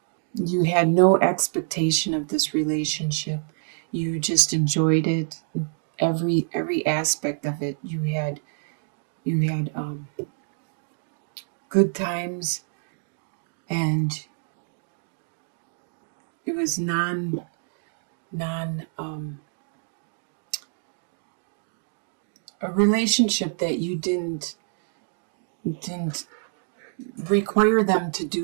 you had no expectation of this relationship. You just enjoyed it. Every aspect of it. You had good times, and it was non a relationship that you didn't require them to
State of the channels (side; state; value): left; silent; digital silence